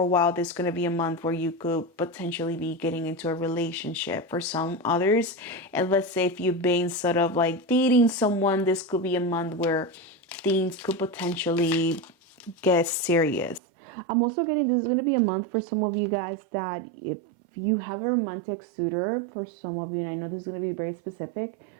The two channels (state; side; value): drops out; left; at 13.6 s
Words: a while, there's going to be a month where you could potentially be getting into a relationship. For some others, and let's say if you've been sort of like dating someone, this could be a month where things could potentially get serious. I'm also getting, this is going to be a month for some of you guys that if you have a romantic suitor, for some of you, and I know this is going to be very specific,